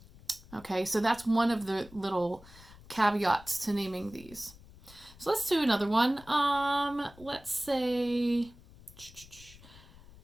Okay, so that's one of the little caveats to naming these. So let's do another one. Let's say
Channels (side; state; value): left; noise; rumble, 21 dB below the sound